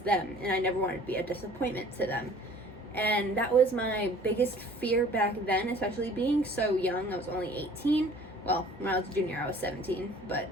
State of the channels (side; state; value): both; normal; correlation 0.50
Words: them and I never wanted to be a disappointment to them. And that was my biggest fear back then, especially being so young. I was only 18. Well, when I was a junior, I was 17. But,